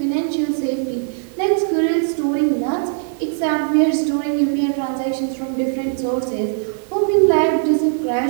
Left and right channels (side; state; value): left; silent; digital silence